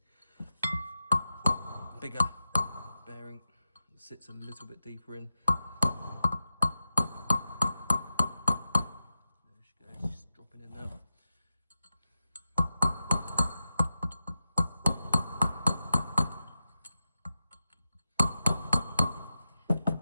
bigger bearing. It sits a little bit deeper in. There she goes, just dropping in there.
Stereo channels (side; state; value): both; inverted; correlation -0.91